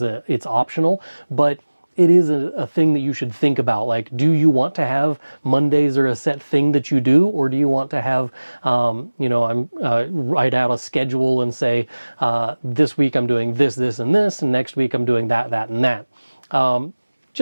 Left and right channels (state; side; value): inverted; both; correlation -1.00